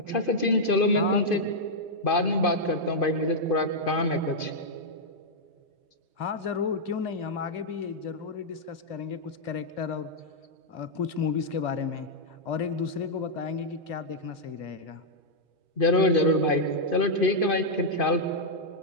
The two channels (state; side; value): late; right; 2.5 ms